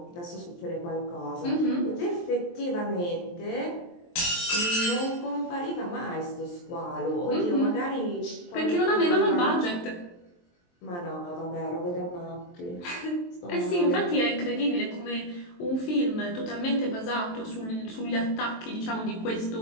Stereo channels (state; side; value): late; right; 23 ms